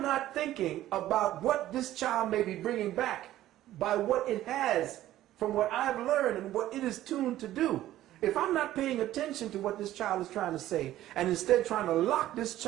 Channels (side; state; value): left; quieter; 13.9 dB